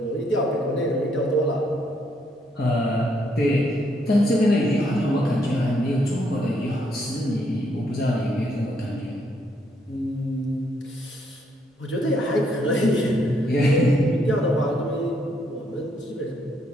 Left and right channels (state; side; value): normal; both; correlation 0.73